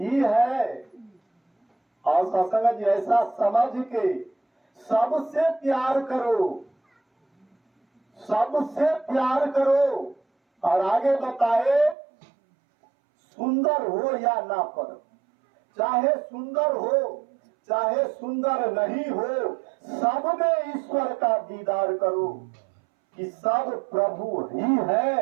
है। और सत्संग जी ऐसा समझ के सबसे प्यार करो, सबसे प्यार करो। और आगे बताए सुंदर हो या ना पर, चाहे सुंदर हो चाहे सुंदर नहीं हो, सब में ईश्वर का दीदार करो कि सब प्रभु ही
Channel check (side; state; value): left; drops out; at 12.0 s